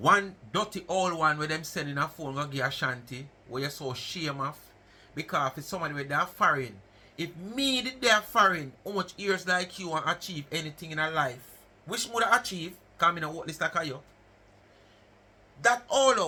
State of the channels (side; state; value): both; identical; correlation 1.00